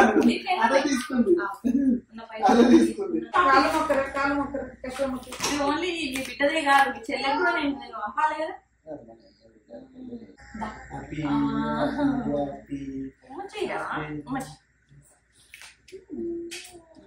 ఓన్లీ మీ బిడ్డదే కాదు, మీ చెల్లెలు కూడా నేను పంపాలి కదా.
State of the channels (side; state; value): both; identical; correlation 1.00